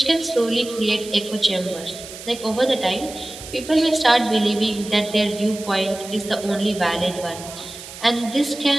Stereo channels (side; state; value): right; noise; hiss, 14 dB below the sound